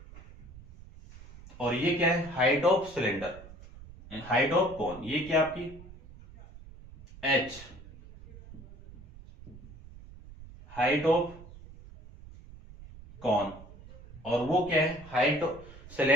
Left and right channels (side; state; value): right; noise; rumble, 18 dB below the sound